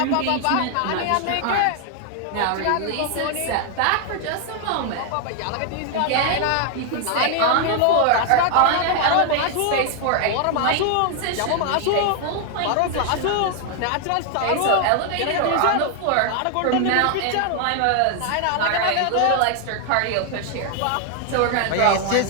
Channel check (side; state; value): both; different; correlation 0.00